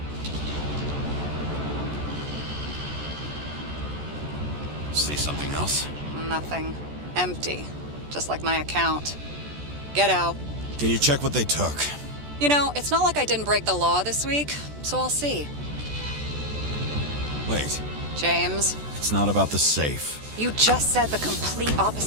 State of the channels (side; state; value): left; late; 14 ms